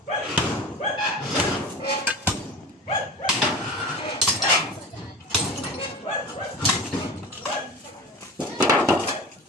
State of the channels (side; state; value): both; normal; correlation 0.33